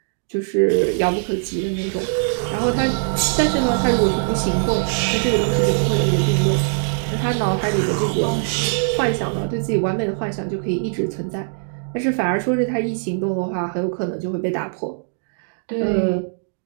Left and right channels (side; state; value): left; silent; digital silence